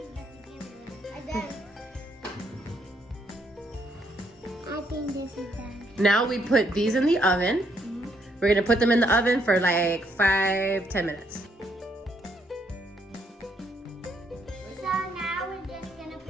And then I think this is done. Now we put these in the oven. We're gonna put them in the oven for like 5-10 minutes. So now we're just gonna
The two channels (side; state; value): both; normal; correlation 0.72